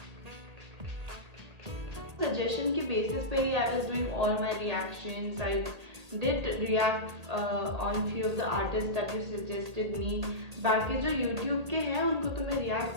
सजेशन के बेसिस पे ही I was doing all my reactions. I did react on few of the artist that you suggested me. बाकी जो यूट्यूब के हैं उनको तो मैं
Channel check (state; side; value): late; left; 1.8 ms